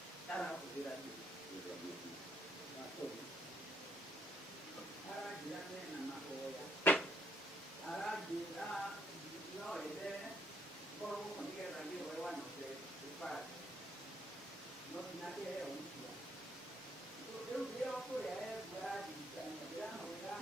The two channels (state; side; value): normal; both; correlation 0.70